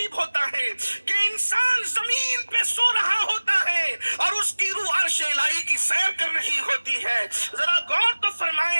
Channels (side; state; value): both; inverted; correlation -1.00